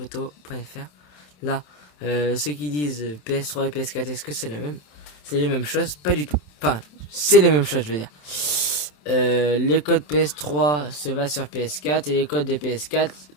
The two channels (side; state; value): right; late; 27 ms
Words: Là, ceux qui disent PS3 et PS4, est-ce que c'est la même? C'est les mêmes choses? Pas du tout. Enfin, c'est les mêmes choses, je veux dire. Les codes PS3 se va sur PS4 et les codes des PS4